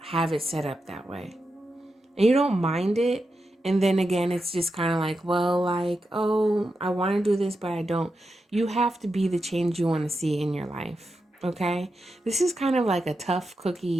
it set up that way. And you don't mind it. And then again, it's just kind of like, well, like, oh, I want to do this, but I don't. You have to be the change you want to see in your life. Okay? This is kind of like a tough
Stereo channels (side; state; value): both; normal; correlation 0.88